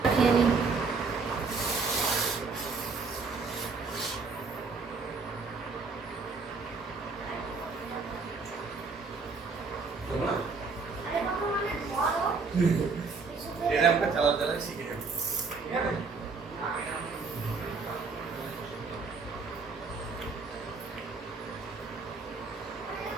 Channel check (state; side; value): quieter; left; 4.5 dB